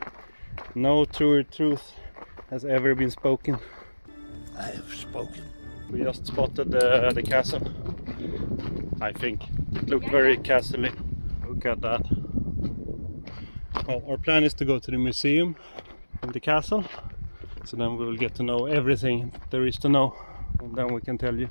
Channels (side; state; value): both; inverted; correlation -1.00